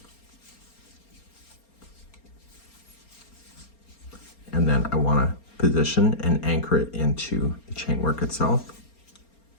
And then I want to position and anchor it into the chain work itself.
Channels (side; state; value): right; late; 4.3 ms